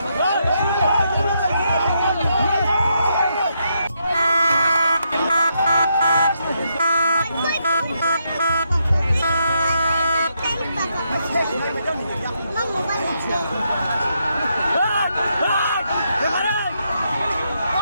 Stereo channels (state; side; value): inverted; both; correlation -0.79